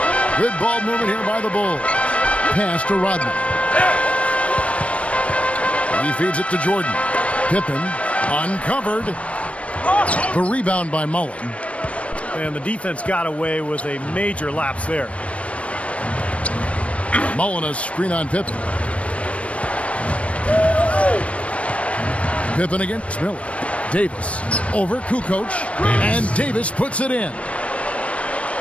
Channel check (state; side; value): late; right; 0.063 ms